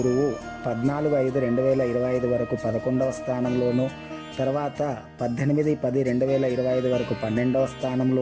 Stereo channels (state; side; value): identical; both; correlation 1.00